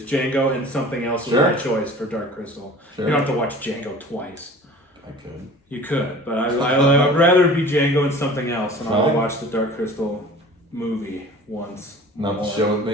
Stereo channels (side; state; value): both; normal; correlation 0.43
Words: Django and something else was my choice for Dark Crystal. You don't have to watch Django twice. I could. You could, but I would rather it be Django and something else, and I'll watch the Dark Crystal movie once. Not the show with